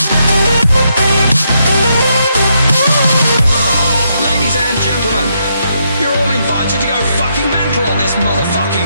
Ladies and gentlemen, you're all invited to go fucking mental on this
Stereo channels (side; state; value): both; inverted; correlation -0.78